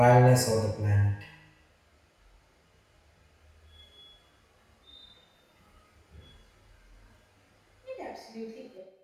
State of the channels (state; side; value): identical; both; correlation 1.00